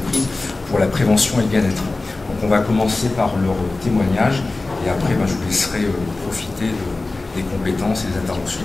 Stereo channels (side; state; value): right; quieter; 3.2 dB